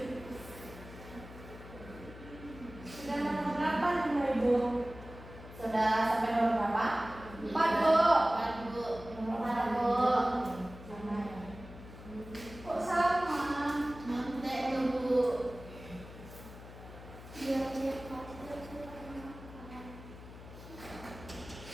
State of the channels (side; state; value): left; noise; hum, 15 dB below the sound